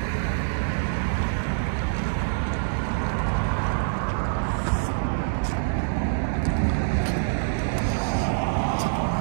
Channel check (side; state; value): left; silent; 62 dB below the other